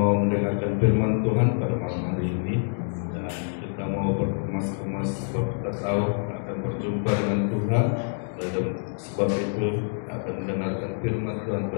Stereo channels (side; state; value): right; silent; digital silence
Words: mau mendengarkan firman Tuhan pada malam hari ini, dan kita mau berkemas-kemas sebab kita tahu akan berjumpa dengan Tuhan, dan sebab itu akan mendengarkan firman Tuhan